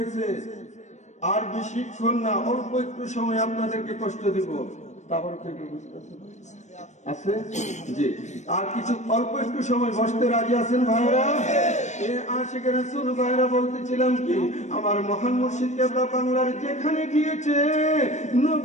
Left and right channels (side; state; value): right; late; 0.34 ms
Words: আর বেশিক্ষণ না, অল্প একটু সময় আপনাদেরকে কষ্ট দিব। তারপর থেকে আছে জি, আর কিছু অল্প একটু সময় বসতে রাজি আছেন ভাইরা? আশিকের রাসূল ভাইরা বলতেছিলাম কি, আমার মহান মুর্শিদ কেবলা বাংলার যেখানে গিয়েছে